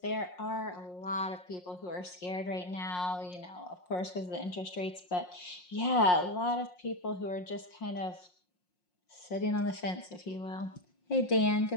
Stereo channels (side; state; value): right; late; 5.6 ms